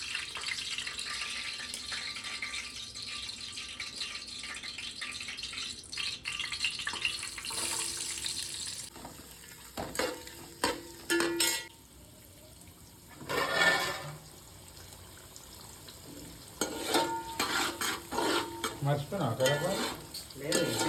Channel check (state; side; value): identical; both; correlation 1.00